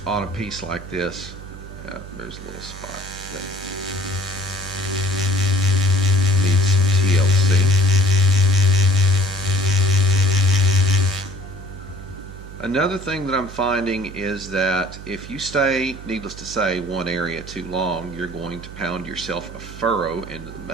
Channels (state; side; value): noise; right; hum, 14 dB below the sound